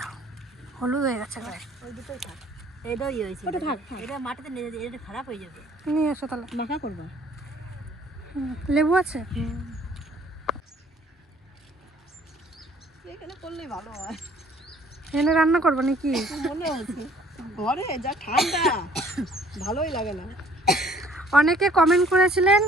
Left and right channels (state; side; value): normal; both; correlation 0.57